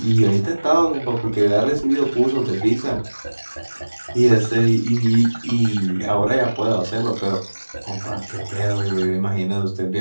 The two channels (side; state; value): both; inverted; correlation -1.00